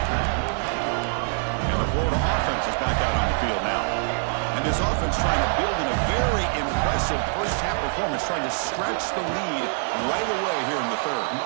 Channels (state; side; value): silent; left; digital silence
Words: And the Florida offense is back out on the field now. And this offense trying to build in a very impressive first-half performance, trying to stretch the lead right away here in the third.